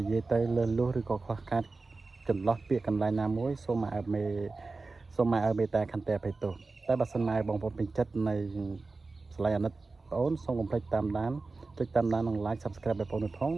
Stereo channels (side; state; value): left; quieter; 3.8 dB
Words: ិយាយទៅលឺលុះឬក៏ខ្វះខាតចន្លោះពាក្យកន្លែងណាមួយសូមឲ្យមេតាខន្តីអភ័យទោសតែបើសិនមកឲ្យបងប្អូនពេញចិត្តនៃស្លាយអាណិតបងប្អូនសូមកុំភ្លេចតាមដានចុចតាមដាននិង like subscribe បងប្អូនផង